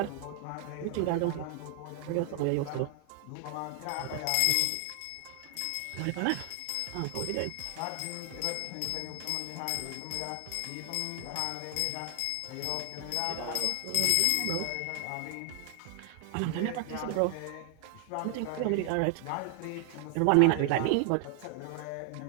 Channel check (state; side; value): different; both; correlation 0.00